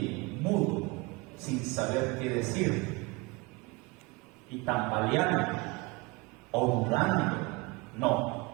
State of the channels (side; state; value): left; quieter; 25.8 dB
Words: mudo, sin saber qué decir, y tambaleando o dudando, no,